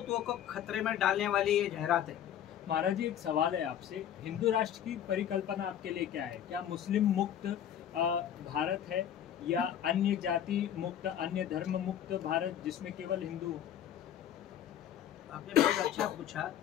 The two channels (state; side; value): quieter; right; 10.1 dB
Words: को खतरे में डालने वाली ये जाहिरात है। महाराज जी, एक सवाल है आपसे। हिंदू राष्ट्र की परिकल्पना आपके लिए क्या है? क्या मुस्लिम मुक्त भारत है, या अन्य जाति मुक्त, अन्य धर्म मुक्त भारत जिसमें केवल हिंदू? आपने बहुत अच्छा पूछा।